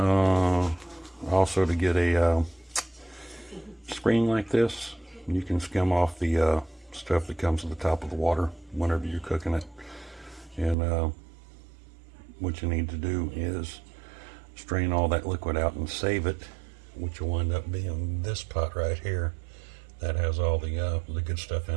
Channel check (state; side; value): drops out; left; at 10.8 s